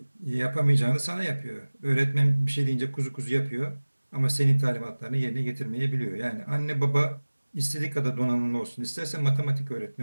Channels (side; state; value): both; inverted; correlation -1.00